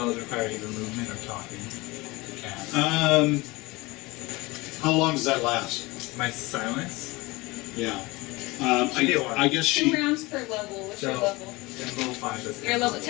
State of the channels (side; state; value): right; quieter; 22.8 dB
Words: require either movement or talking. Cast. How long does that last? My silence? Yeah. She did one. I guess 2 she. rounds per level. What's your So- level? Then level 5 is You're level